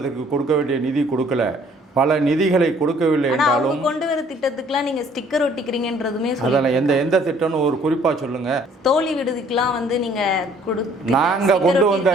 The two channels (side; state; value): both; normal; correlation 0.59